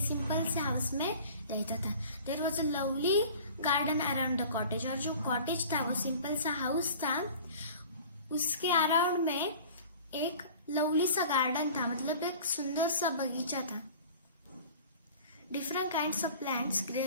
सिंपल से हाउस में रहता था. There was a lovely garden around the cottage. और जो कॉटेज था वो सिंपल सा हाउस था, उसके अराउंड में एक लवली सा गार्डन था, मतलब एक सुंदर सा बगीचा था. Different kinds of plants grey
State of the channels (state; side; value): inverted; both; correlation -0.43